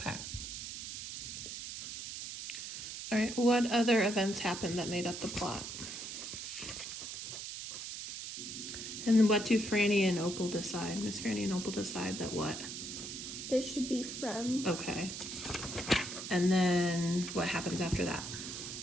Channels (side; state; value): right; noise; hiss, 7 dB below the sound